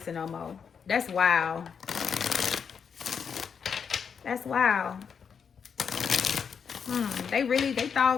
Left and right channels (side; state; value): right; quieter; 6.7 dB